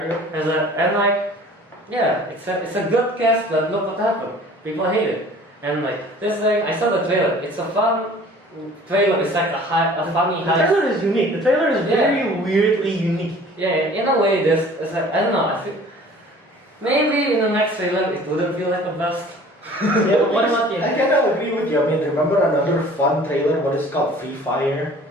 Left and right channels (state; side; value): normal; both; correlation 0.48